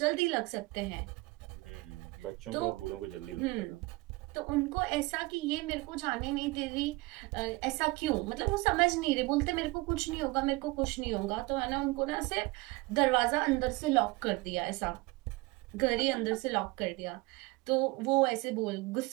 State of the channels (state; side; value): quieter; left; 23.1 dB